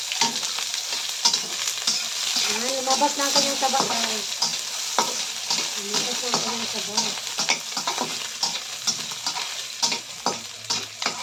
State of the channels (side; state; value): both; identical; correlation 1.00